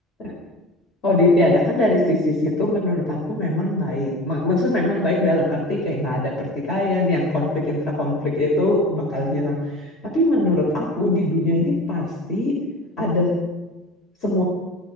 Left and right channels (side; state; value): both; normal; correlation 0.35